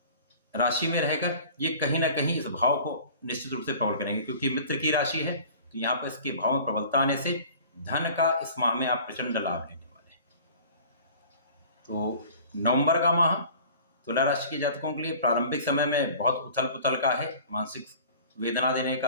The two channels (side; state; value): both; inverted; correlation -0.45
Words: राशि में रहकर ये कहीं ना कहीं इस भाव को निश्चित रूप से प्रबल करेंगे, क्योंकि मित्र की राशि है, तो यहाँ पर इसके भाव में प्रबलता आने से धन का इस माह में आप प्रचंड लाभ लेने वाले हैं। तो नवंबर का माह तुला राशि के जातकों के लिए प्रारंभिक समय में बहुत उथल पुथल का है, मानसिक वेदना देने